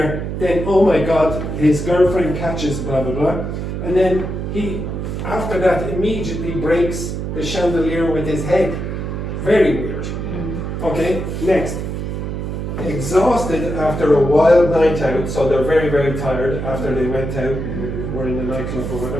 then, oh my God, his girlfriend catches blah, blah, blah. And then he, after that, immediately breaks the chandelier with his head. Very weird. Okay, next. Exhausted after a wild night out, so they're very, very tired after they went out and were in the nightclub or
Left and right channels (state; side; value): noise; right; hum, 4 dB below the sound